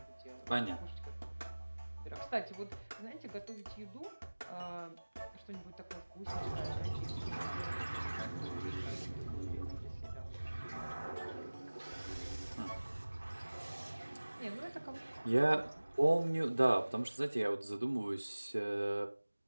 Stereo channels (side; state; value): both; inverted; correlation -1.00